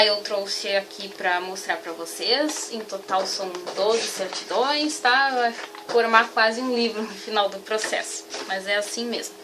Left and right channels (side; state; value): both; identical; correlation 1.00